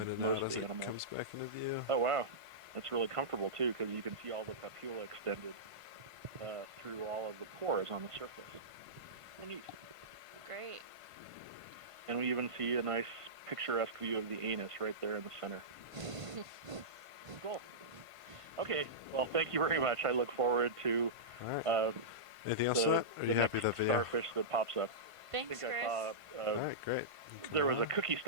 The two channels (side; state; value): left; late; 1.5 ms